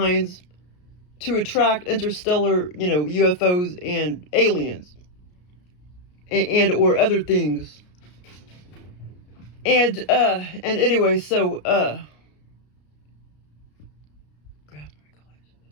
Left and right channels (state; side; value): late; right; 33 ms